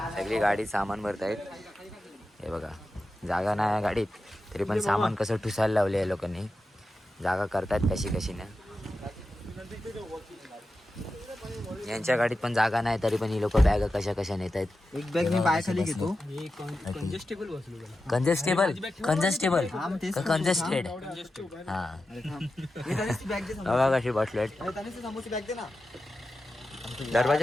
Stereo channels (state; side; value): normal; both; correlation 0.91